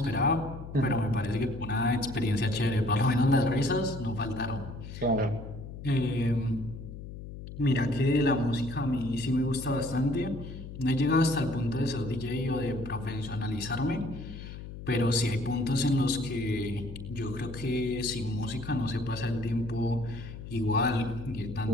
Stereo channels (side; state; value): left; noise; hum, 11 dB below the sound